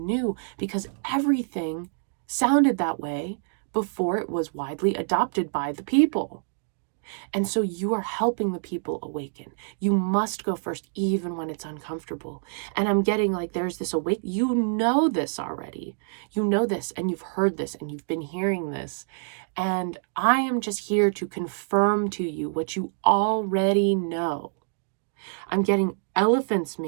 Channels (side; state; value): left; silent; digital silence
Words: because everything sounded that way before it was widely adopted by the people. And so you are helping the people awaken. You must go first, even when it's uncomfortable. And I'm getting like there's this you know this already. You know this, and you've heard this, and you've been hearing this. And I am just here to confirm to you what you already know. I'm getting elephants